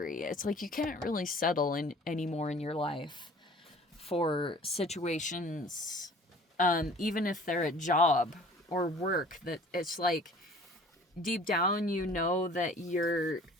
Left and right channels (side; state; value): both; normal; correlation 0.49